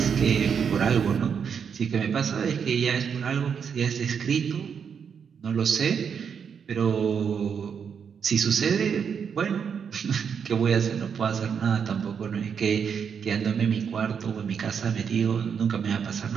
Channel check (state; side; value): quieter; left; 7.0 dB